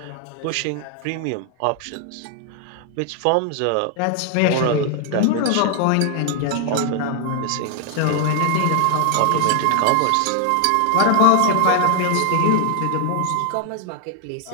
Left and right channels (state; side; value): different; both; correlation 0.00